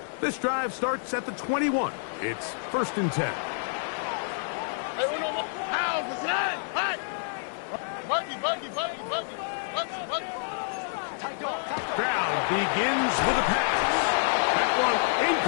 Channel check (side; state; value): right; silent; digital silence